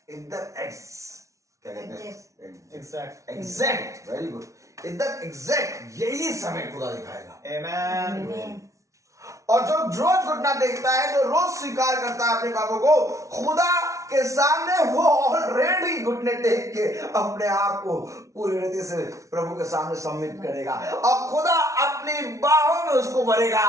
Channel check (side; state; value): left; late; 0.15 ms